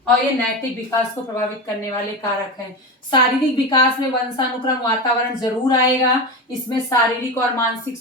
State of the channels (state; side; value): normal; both; correlation 0.21